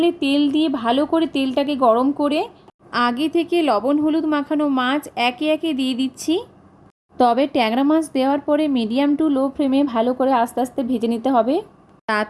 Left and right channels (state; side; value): identical; both; correlation 1.00